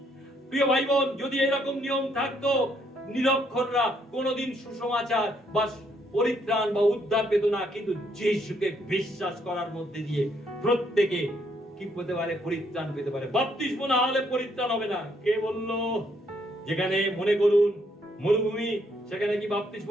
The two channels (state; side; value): normal; both; correlation 0.71